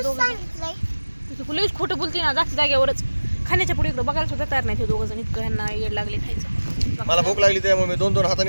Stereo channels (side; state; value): both; inverted; correlation -1.00